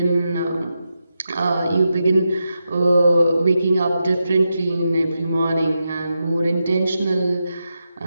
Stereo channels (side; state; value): both; inverted; correlation -0.87